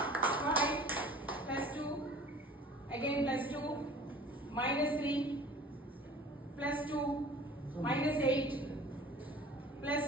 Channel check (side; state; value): both; normal; correlation 0.46